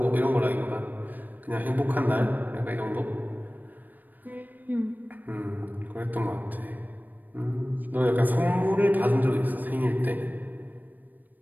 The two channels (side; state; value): left; late; 0.086 ms